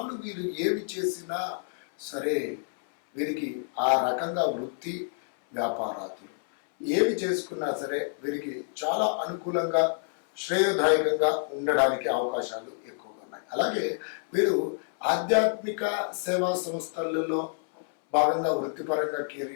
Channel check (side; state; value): right; silent; 59 dB below the other